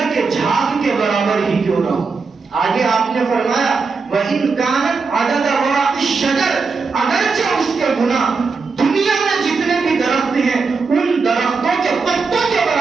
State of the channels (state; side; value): quieter; left; 4.6 dB